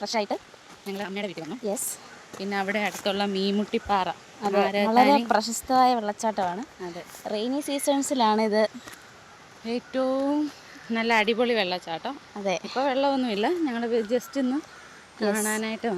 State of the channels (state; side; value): identical; both; correlation 1.00